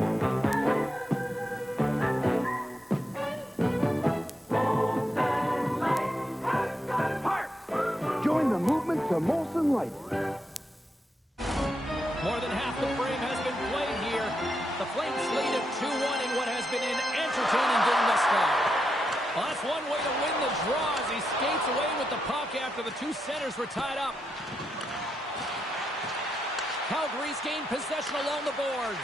Join the movement to Molson Light. More than half the frame has been played here. The Flames lead at 2-1 in what has been an entertaining game thus far. Well, that's one way to win the draw as he skates away with the puck after the two centers were tied up. Calgary's gained possession along the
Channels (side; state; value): both; normal; correlation 0.83